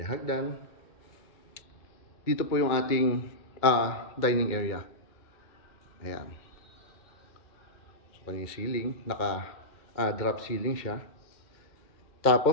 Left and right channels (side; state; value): right; late; 2.2 ms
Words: Dito po yung ating dining area. Ayan. So kanyang ceiling, naka drop ceiling siya.